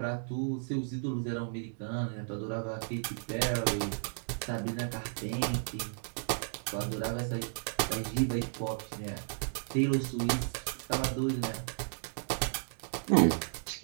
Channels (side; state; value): left; silent; digital silence